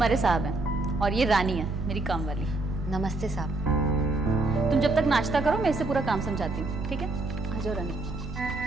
साहब हैं और ये रानी है मेरी काम वाली। नमस्ते साहब। तुम जब तक नाश्ता करो मैं इससे पूरा काम समझाती हूँ, ठीक है? आ जाओ रानी।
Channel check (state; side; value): quieter; left; 3.1 dB